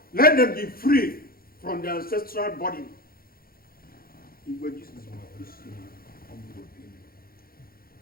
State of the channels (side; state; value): right; late; 0.43 ms